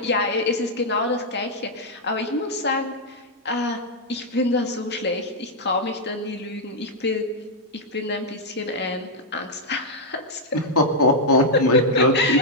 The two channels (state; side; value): normal; both; correlation -0.03